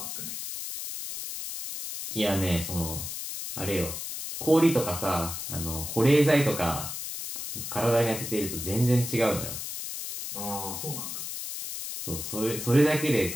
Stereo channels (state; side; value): noise; left; hiss, 6 dB below the sound